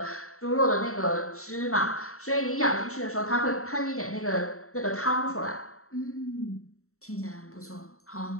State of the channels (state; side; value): late; right; 0.64 ms